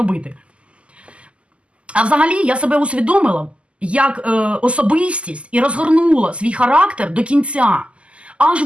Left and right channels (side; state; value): left; late; 0.056 ms